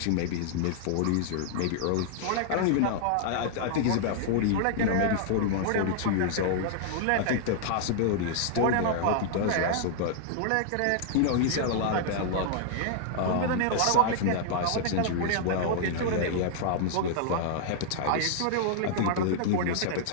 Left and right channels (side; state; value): both; different; correlation -0.01